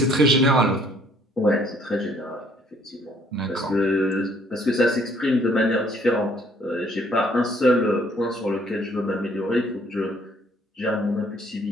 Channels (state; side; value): normal; both; correlation 0.62